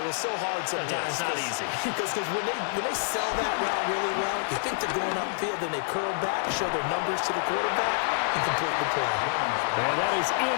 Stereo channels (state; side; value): silent; right; digital silence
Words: it's so hard sometimes. Yeah, it's not easy. Because when they sell that route really well, you think they're going upfield, then they curl back, show their numbers to the quarterback, and complete the play. And that is